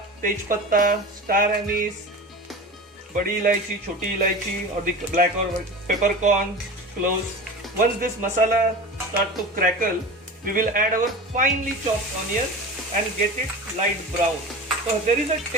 tej patta, star anise, badi ilaichi, choti ilaichi or the black or peppercorn, cloves. Once this masala start to crackle, we will add our finely chopped onion and get it light brown. So there is a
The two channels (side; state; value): both; normal; correlation 0.32